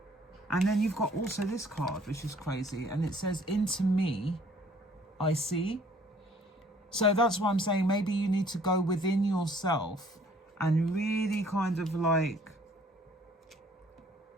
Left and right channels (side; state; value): both; normal; correlation 0.58